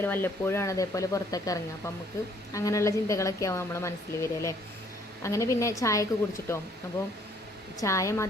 വല്ലപ്പോഴാണ് അതേപോലെ പുറത്തൊക്കെ ഇറങ്ങുക. അപ്പം നമുക്ക് അങ്ങനെയുള്ള ചിന്തകളൊക്കെ ആവും നമ്മളെ മനസ്സിൽ വരിക അല്ലേ. അങ്ങനെ പിന്നെ ചായയൊക്കെ കുടിച്ചിട്ടോ. അപ്പോൾ ചായ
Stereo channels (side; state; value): both; normal; correlation 0.63